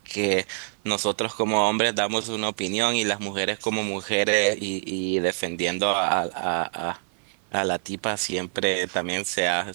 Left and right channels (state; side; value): silent; left; 60 dB below the other